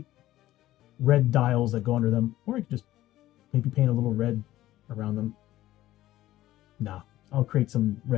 red dials that go under them, or I could just maybe paint a little red around them. Nah, I'll create some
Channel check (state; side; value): quieter; right; 15.1 dB